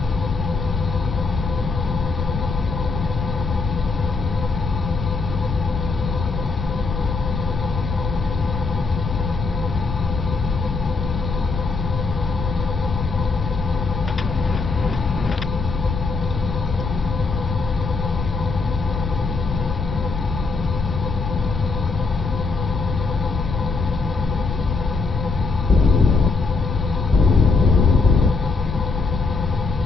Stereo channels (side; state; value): right; quieter; 4.1 dB